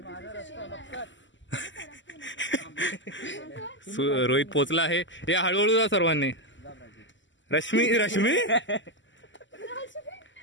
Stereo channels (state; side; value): late; right; 0.54 ms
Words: रोहित पोचला आहे. या हळूहळू जा सर्वांनी. रश्मी रश्मी